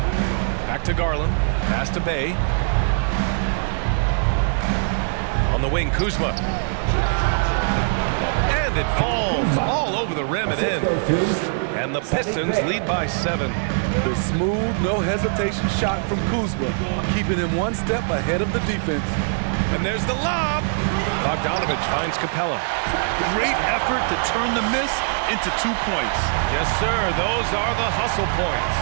Back to Garland. Pass to Bay. On the wing, Kuzma. And it falls all over the rim and in. And the Pistons lead by 7. The smooth, no hesitation shot from Kuzma, keeping him 1 step ahead of the defense. And there's the lob. Bogdanovich finds Capella. Great effort to turn the miss into 2 points. Yes, sir. Those are the hustle points.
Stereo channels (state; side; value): silent; left; 64 dB below the other